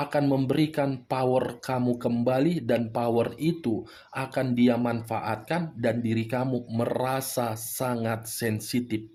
memberikan power kamu kembali, dan power itu akan dia manfaatkan dan diri kamu merasa sangat sensitif.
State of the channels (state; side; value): identical; both; correlation 1.00